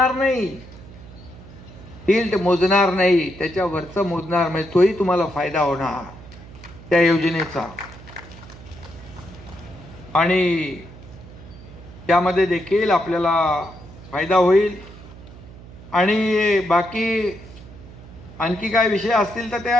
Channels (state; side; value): noise; right; hum, 18 dB below the sound